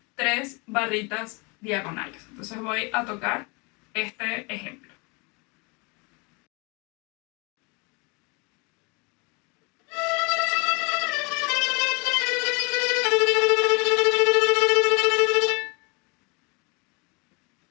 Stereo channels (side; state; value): right; quieter; 29.7 dB